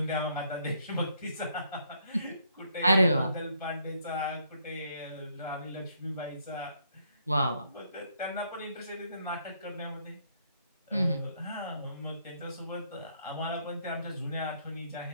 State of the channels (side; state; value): both; inverted; correlation -0.71